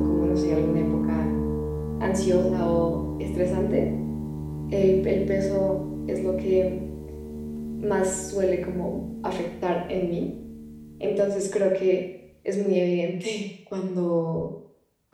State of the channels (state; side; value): identical; both; correlation 1.00